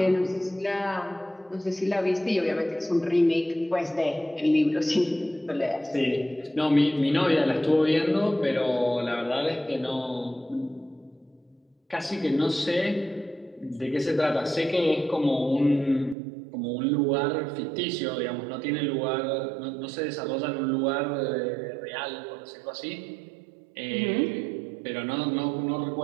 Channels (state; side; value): drops out; left; at 16.2 s